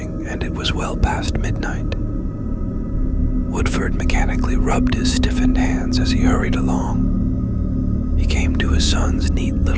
and it was well past midnight. Woodford mechanically rubbed his stiffened hands as he hurried along. He came to his son's neat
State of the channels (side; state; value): both; identical; correlation 1.00